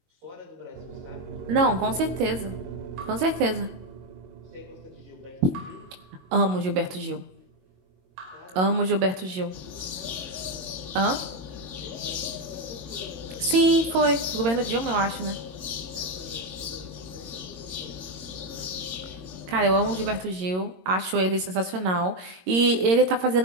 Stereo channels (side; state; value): left; late; 22 ms